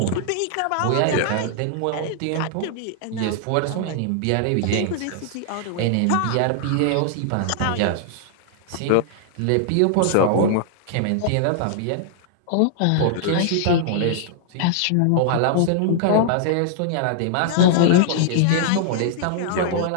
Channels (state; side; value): different; both; correlation -0.01